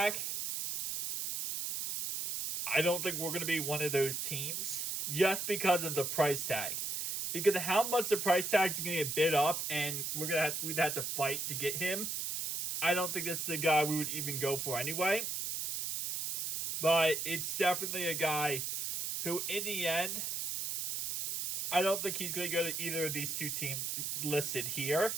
I don't think we're going to be one of those teams just because of the price tag. Because of how much the price tag is going to get bid up and we'd have to fight to get him. I don't think this is the guy we would even go for anyway. But it's definitely a guy who, in the end, I don't think he's going to go to either of these 2 teams listed here.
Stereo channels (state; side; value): noise; right; hiss, 2 dB below the sound